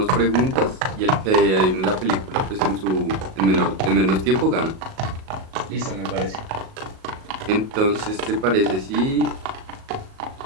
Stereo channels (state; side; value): late; left; 37 ms